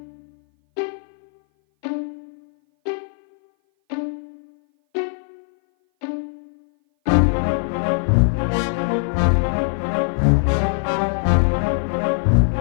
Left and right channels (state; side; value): silent; right; 58 dB below the other